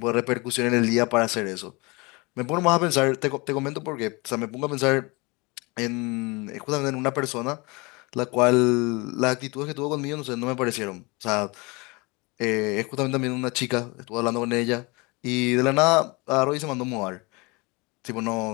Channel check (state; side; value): quieter; right; 26.6 dB